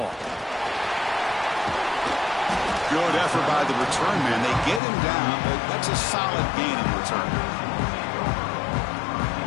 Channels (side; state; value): right; drops out; at 4.8 s